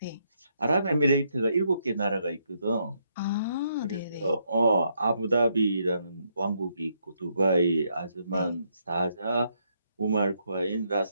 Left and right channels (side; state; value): both; inverted; correlation -0.76